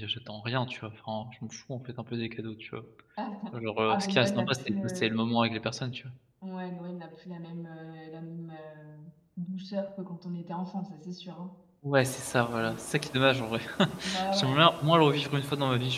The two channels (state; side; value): identical; both; correlation 1.00